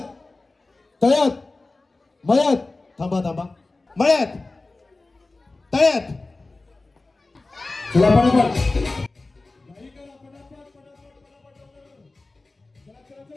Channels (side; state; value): right; quieter; 3.3 dB